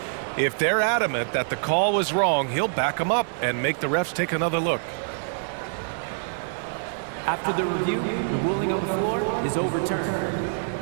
If they're adamant that the call was wrong, he'll back them up and make the refs take another look. After the review, the ruling on the floor is overturned.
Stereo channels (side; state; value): left; silent; 61 dB below the other